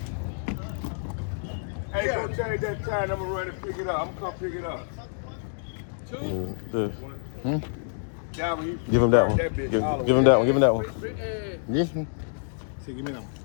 Hey, go change that tie and I'm gonna run and pick it up. I'm gonna come pick it up. Give him that one. Give him that one. Give him that one. Yes. See, give me that one.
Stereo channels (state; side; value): silent; right; digital silence